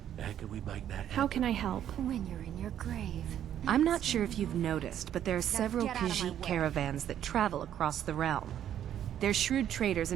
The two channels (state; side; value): quieter; left; 10.4 dB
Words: How can we make that happen? How can I help? When you're in your grave. I'm not sure if you've noticed, but there are several get out of my Khajiit way. caravans that travel across the realm. They're shrewd traders